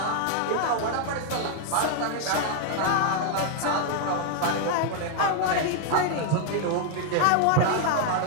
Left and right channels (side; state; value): both; different; correlation 0.00